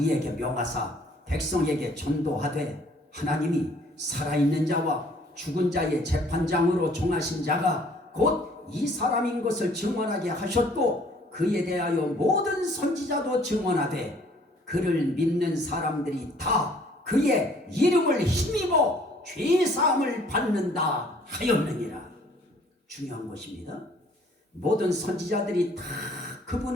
명하사 백성에게 전도하되 하나님이 살아있는 자와 죽은 자의 재판장으로 정하신 자가 곧 이 사람인 것을 증언하게 하셨고, 그에 대하여 모든 선지자도 증언하되 그를 믿는 사람들이 다 그의 이름을 힘입어 죄사함을 받는다 하였느니라. 중요한 것입니다. 모든 선지자들이 다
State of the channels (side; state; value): both; normal; correlation 0.58